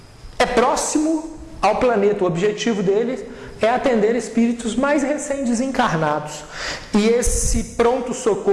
é próximo ao planeta. O objetivo dele é atender espíritos mais recém-desencarnados. E esse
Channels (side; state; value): both; identical; correlation 1.00